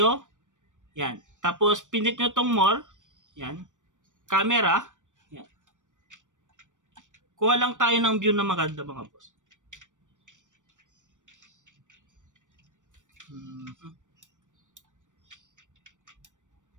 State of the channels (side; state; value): left; late; 0.86 ms